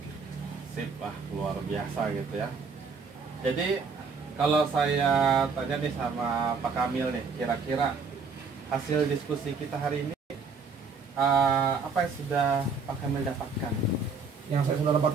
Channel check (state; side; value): quieter; left; 5.0 dB